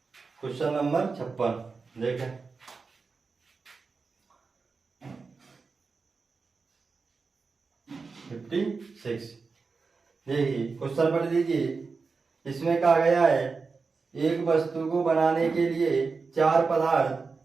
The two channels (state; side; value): quieter; left; 4.6 dB